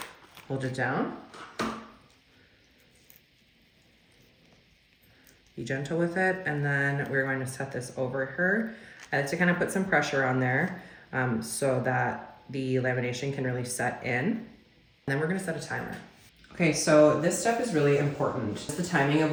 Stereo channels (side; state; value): both; identical; correlation 1.00